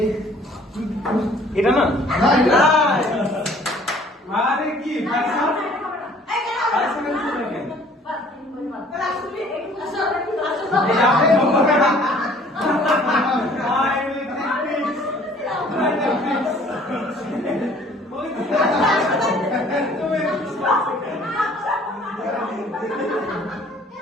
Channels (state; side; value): normal; both; correlation 0.55